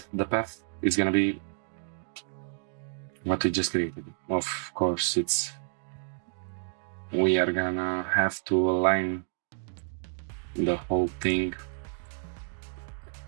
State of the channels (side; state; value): left; silent; digital silence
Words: the path is gonna be what we just created. Of course, we are gonna have to align the whole thing